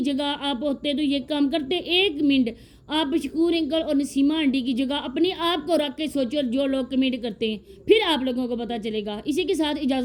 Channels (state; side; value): identical; both; correlation 1.00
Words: جگہ آپ ہوتے تو یہ کام کرتے؟ ایک منٹ آپ شکور انکل اور نسیمہ آنٹی کی جگہ اپنے آپ کو رکھ کے سوچو، جو لوگ کمنٹ کرتے ہیں، پھر آپ لوگوں کو پتہ چلے گا۔ اسی کے ساتھ